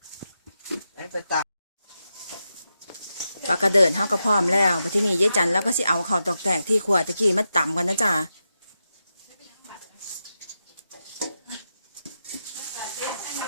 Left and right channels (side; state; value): both; inverted; correlation -0.88